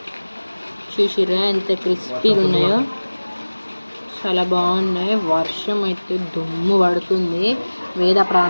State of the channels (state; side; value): inverted; both; correlation -1.00